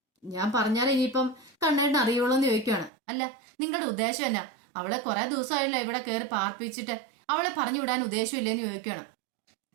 ഞാൻ പറഞ്ഞാൽ ഇനിയിപ്പം കണ്ണേട്ടന് അറിയുള്ളൂ എന്ന് ചോദിക്കുകയാണ്. അല്ല, നിങ്ങളുടെ ഉദ്ദേശം എന്നാ? അവളെ കുറെ ദിവസമായല്ലോ ഇവിടെ കയറി പാർപ്പിച്ചിട്ട്, അവളെ പറഞ്ഞു വിടാൻ ഉദ്ദേശമില്ലെന്ന് ചോദിക്കുകയാണ്.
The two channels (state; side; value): drops out; left; at 2.9 s